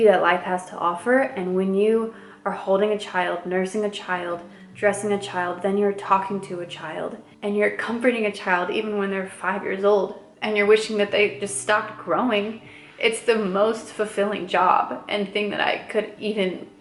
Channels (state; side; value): identical; both; correlation 1.00